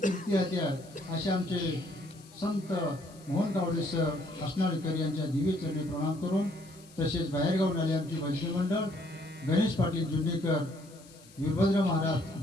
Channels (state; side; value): noise; left; hiss, 24 dB below the sound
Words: होते. असे आमचे संत मोहन कावडे सर हसनाळीकर यांच्या दिव्य चरणी प्रणाम करून, तसेच बाहेरगावून आले आमचे भजनी मंडळ गणेश पाटील जुन्नीकर, वीरभद्र